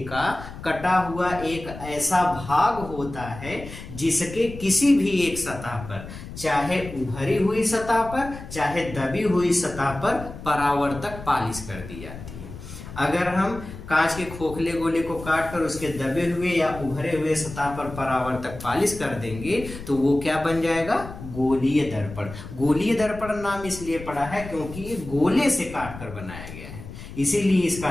का कटा हुआ एक ऐसा भाग होता है जिसके किसी भी एक सतह पर, चाहे उभरी हुई सतह पर चाहे दबी हुई सतह पर परावर्तक पॉलिश कर दी जाती है। अगर हम कांच के खोखले गोले को काट कर उसके दबे हुए या उभरे हुए सतह पर परावर्तक पॉलिश कर देंगे तो वो क्या बन जाएगा, गोलीय दर्पण। गोलीय दर्पण नाम इसलिए पड़ा है क्योंकि ये गोले से काट कर बनाया गया है, इसीलिए इसका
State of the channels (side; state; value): left; noise; rumble, 12 dB below the sound